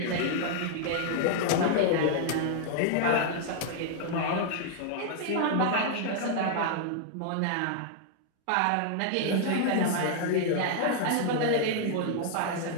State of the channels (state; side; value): different; both; correlation 0.00